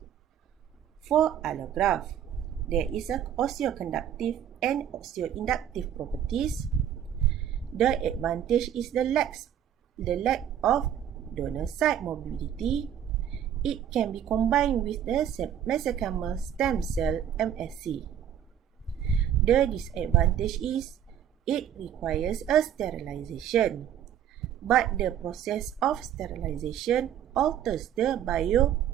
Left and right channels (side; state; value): left; quieter; 9.9 dB